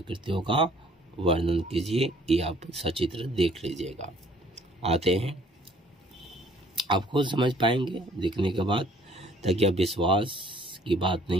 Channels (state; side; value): normal; both; correlation 0.58